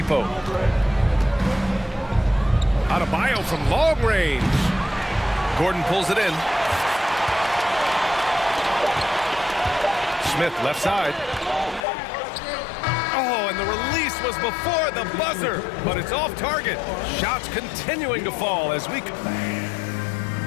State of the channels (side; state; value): right; drops out; at 11.9 s